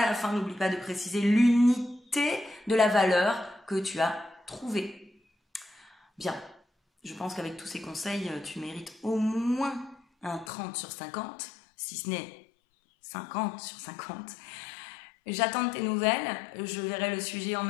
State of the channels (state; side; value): drops out; right; at 10.5 s